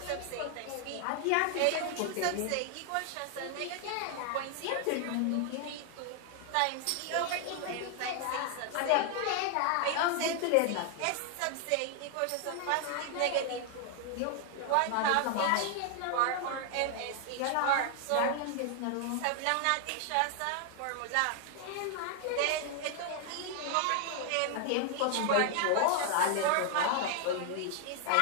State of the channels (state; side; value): different; both; correlation 0.00